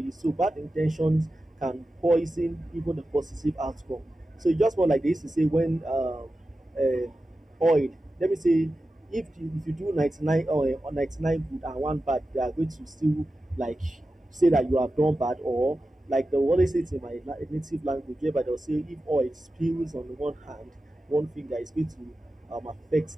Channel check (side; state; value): both; normal; correlation 0.93